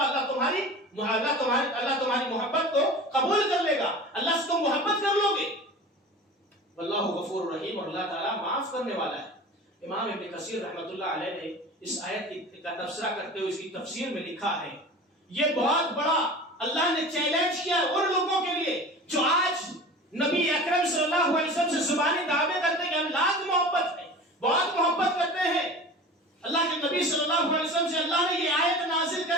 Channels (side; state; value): both; normal; correlation 0.37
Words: تمہاری محبت کو قبول کر لے گا، اللہ سے تم محبت کر لو گے. واللہ غفور رحیم، اور اللہ تعالیٰ معاف کرنے والا ہے. امام ابن کثیر رحمۃ اللہ علیہ نے اس آیت کا تبصرہ کرتے ہوئے اس کی تفسیر میں لکھا ہے یہ بہت بڑا اللہ نے چیلنج کیا ان لوگوں کے لیے جو آج نبی اکرم صلی اللہ علیہ وسلم سے زبانی دعوے کرتے ہیں کہ ہم لاکھ محبت ہے، بہت محبت کرتے ہیں. اللہ کے نبی صلی اللہ علیہ وسلم سے اللہ نے یہ آیت نازل